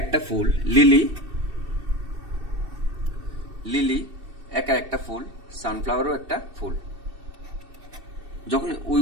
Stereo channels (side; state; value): left; late; 2.7 ms